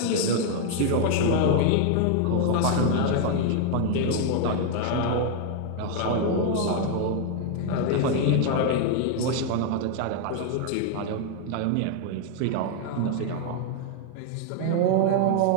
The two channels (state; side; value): different; both; correlation 0.00